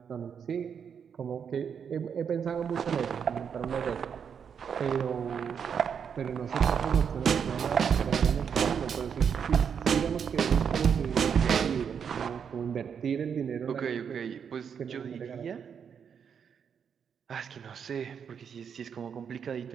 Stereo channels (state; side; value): quieter; left; 7.3 dB